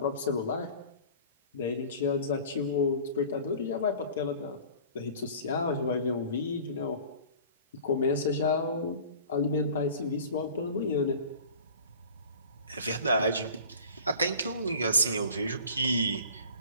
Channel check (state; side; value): inverted; both; correlation -0.43